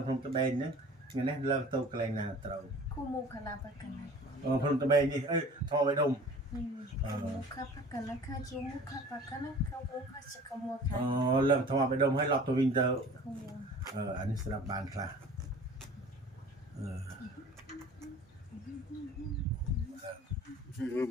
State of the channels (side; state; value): both; normal; correlation 0.45